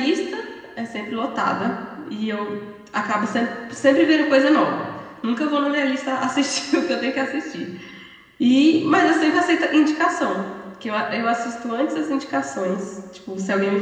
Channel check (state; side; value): identical; both; correlation 1.00